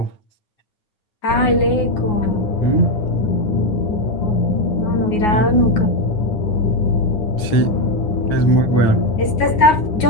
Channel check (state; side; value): late; right; 9.5 ms